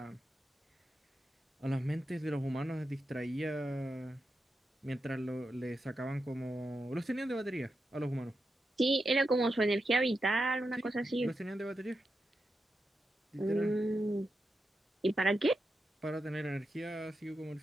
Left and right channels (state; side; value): normal; both; correlation 0.88